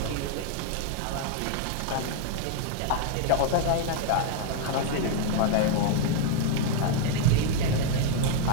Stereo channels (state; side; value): different; both; correlation 0.00